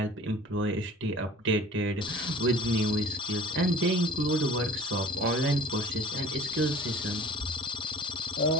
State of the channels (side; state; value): both; normal; correlation 0.47